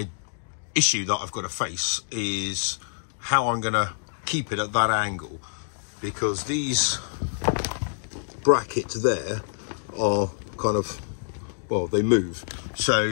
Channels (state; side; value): silent; right; digital silence